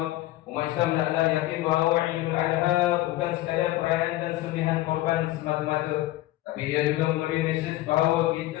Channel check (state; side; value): quieter; right; 16.7 dB